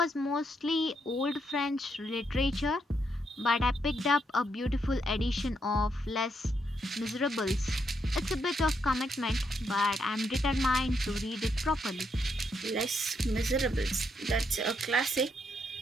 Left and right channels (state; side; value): normal; both; correlation 0.78